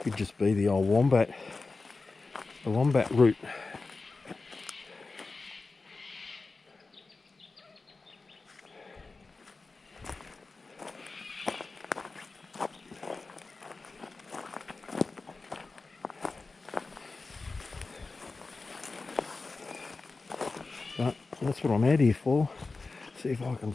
just be the old wombat. The wombat route. But that's what I'm out here for. See if I can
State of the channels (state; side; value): quieter; right; 3.8 dB